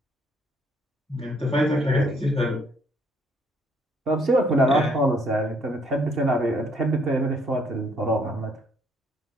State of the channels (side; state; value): both; normal; correlation 0.66